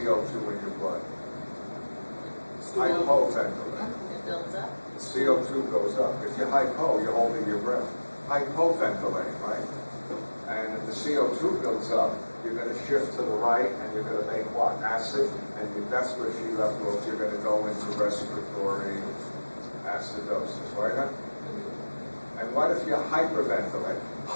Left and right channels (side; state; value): both; inverted; correlation -1.00